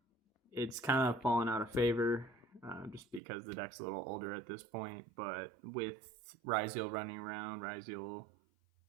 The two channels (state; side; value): drops out; left; at 3.2 s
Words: it's kind of fallen out of favor just because the deck's a little older at this point, but with Ryziel running around, Ryziel